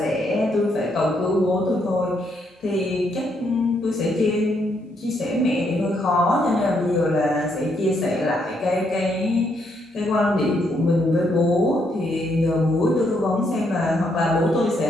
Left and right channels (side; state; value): both; normal; correlation 0.75